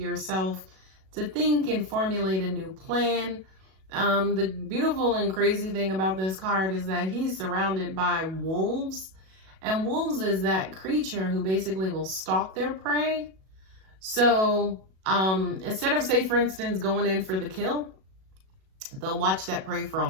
to think and formulate a new plan. The beautiful and crazy thing about this card is that he's surrounded by wolves, and wolves is that creature who basically will stalk their prey. So instead of, say, for instance, going in for the kill, they'll watch that prey for a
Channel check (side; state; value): left; late; 37 ms